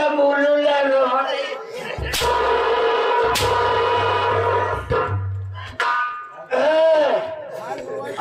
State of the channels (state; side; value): identical; both; correlation 1.00